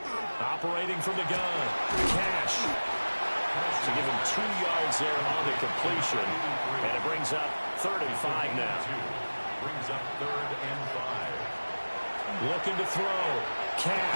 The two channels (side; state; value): both; inverted; correlation -1.00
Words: Operating from the gun. Cash. To give him 2 yards there on the completion. And it brings up 3rd and 5 now. Brings up 3rd and 5. Looking to throw.